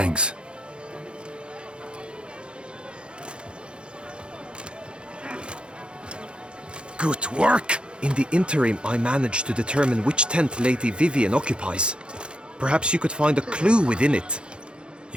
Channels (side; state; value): left; late; 0.054 ms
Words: Good work! In the interim, I managed to determine which tent Lady Vivian occupies. Perhaps you could find a clue within it.